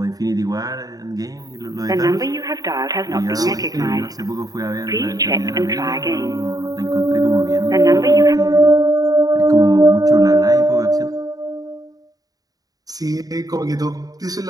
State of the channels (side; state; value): left; late; 0.18 ms